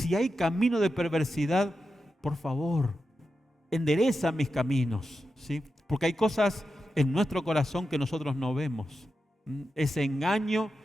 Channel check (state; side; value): normal; both; correlation 0.89